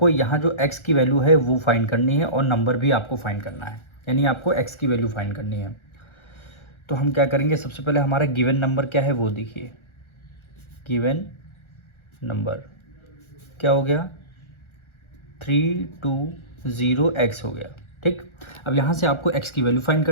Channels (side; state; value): right; late; 1.4 ms